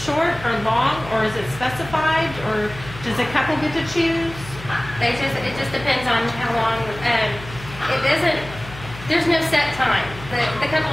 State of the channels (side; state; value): left; noise; hum, 15 dB below the sound